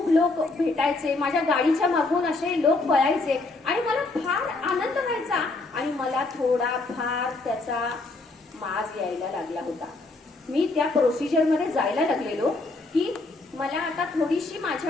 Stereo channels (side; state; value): right; quieter; 3.3 dB